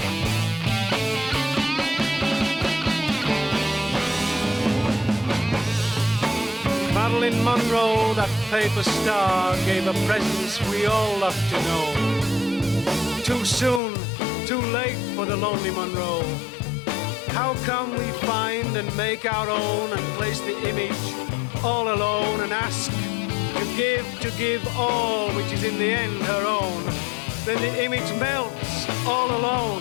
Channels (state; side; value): drops out; right; at 13.8 s